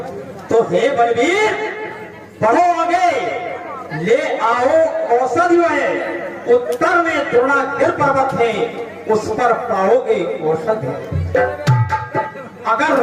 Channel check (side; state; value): both; identical; correlation 1.00